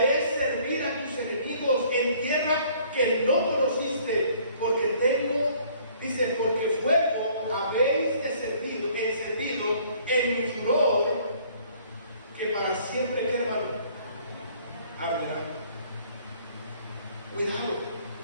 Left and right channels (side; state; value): both; inverted; correlation -0.58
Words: servir a tus enemigos en tierra que no conociste, porque tengo, dice, porque fuego habéis encendido en mi furor, que para siempre, ¿qué, hermano? Arderá. Cuidado.